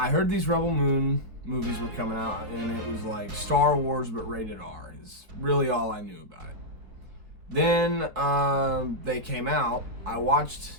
heard these Rebel Moon movies were coming out, and it was like Star Wars but rated R is really all I knew about it. Then they came out. I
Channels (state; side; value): late; left; 4.7 ms